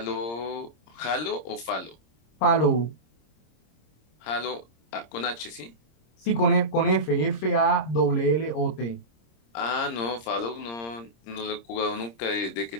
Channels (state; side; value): late; right; 26 ms